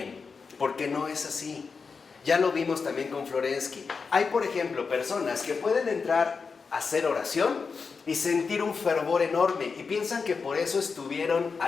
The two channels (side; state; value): right; quieter; 5.1 dB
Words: porque no es así. Ya lo vimos también con Florensky. Hay, por ejemplo, personas que pueden entrar a hacer oración y sentir un fervor enorme y piensan que por eso estuvieron